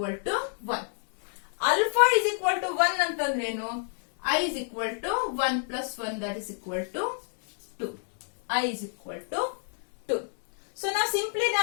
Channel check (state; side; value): silent; right; 58 dB below the other